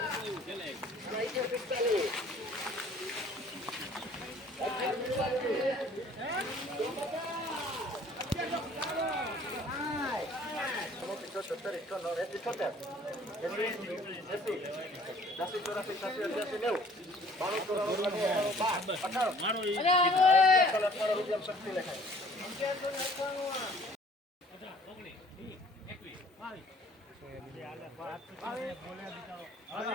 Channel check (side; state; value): both; normal; correlation 0.54